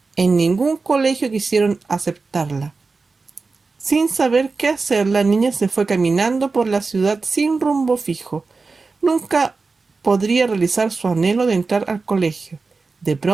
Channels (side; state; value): left; quieter; 4.1 dB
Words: en ningún colegio quisieron aceptarla. Sin saber qué hacer, la niña se fue caminando por la ciudad sin rumbo fijo. Nunca podría realizar su anhelo de entrar al colegio. De